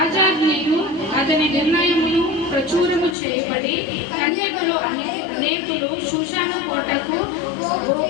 అతని నిర్ణయమును ప్రచురము చేయబడి కన్యకలు అనేకులు షూషాను కోటకు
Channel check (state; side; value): drops out; right; at 3.2 s